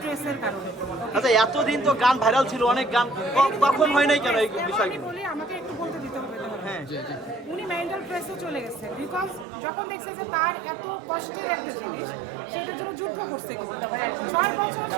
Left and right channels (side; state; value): left; drops out; at 9.5 s